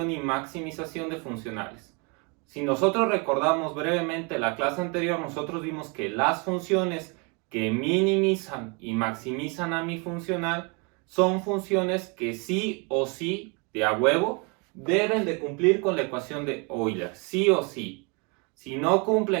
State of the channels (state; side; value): quieter; left; 32.3 dB